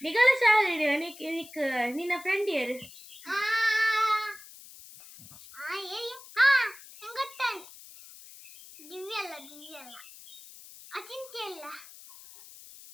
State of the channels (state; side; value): noise; left; hiss, 18 dB below the sound